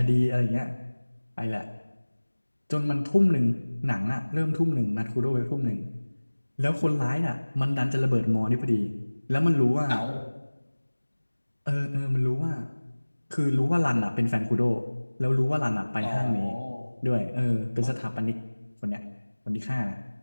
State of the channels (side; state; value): both; inverted; correlation -1.00